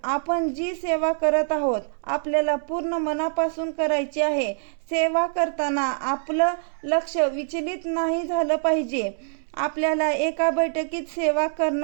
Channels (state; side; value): silent; left; 62 dB below the other